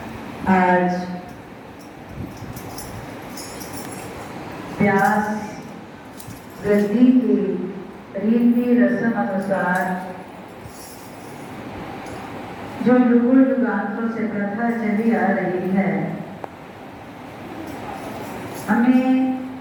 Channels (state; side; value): identical; both; correlation 1.00